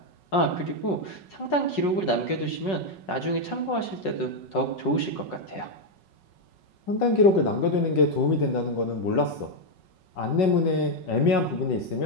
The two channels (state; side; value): late; right; 5.4 ms